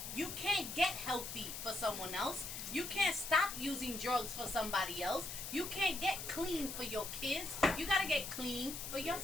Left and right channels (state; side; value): noise; left; hiss, 7 dB below the sound